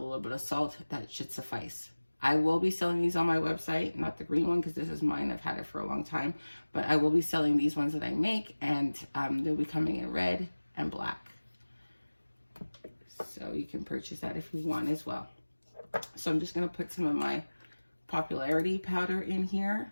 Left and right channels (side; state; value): both; inverted; correlation -1.00